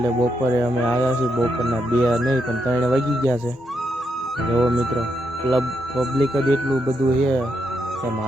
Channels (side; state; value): both; normal; correlation 0.80